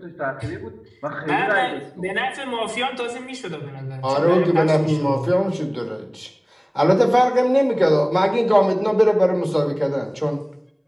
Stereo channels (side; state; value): both; identical; correlation 1.00